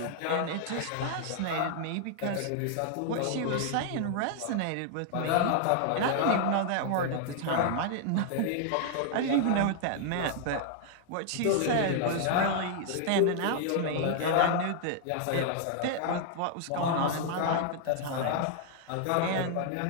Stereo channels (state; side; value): different; both; correlation 0.00